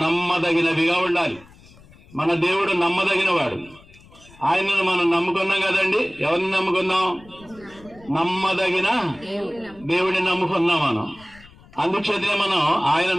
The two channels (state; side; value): noise; left; rumble, 24 dB below the sound